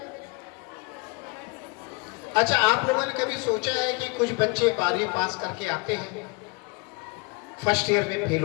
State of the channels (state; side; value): quieter; right; 28.7 dB